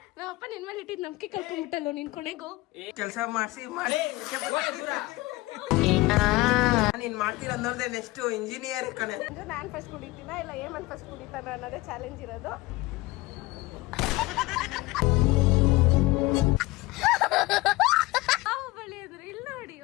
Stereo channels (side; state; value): right; quieter; 20.9 dB